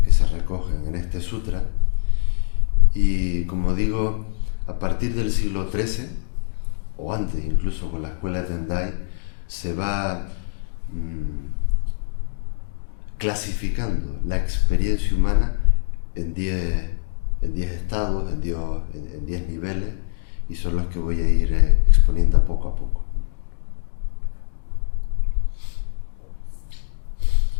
que se recogen en este sutra, y como digo, a partir del siglo XIII, o antes incluso con la escuela Tendai, se va clasificando la experiencia humana en 10 estados, en 10 niveles, y son los que voy a ir exponiendo poco a poco.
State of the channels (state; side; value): silent; right; digital silence